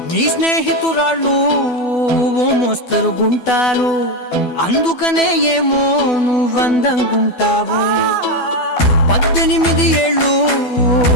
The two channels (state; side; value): late; right; 12 ms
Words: నీ స్నేహితురాళ్ళు ఓ మోస్తరుగుంటారు, అందుకనే ఏమో నువ్వందంగుంటావు. 18 ఏళ్ళు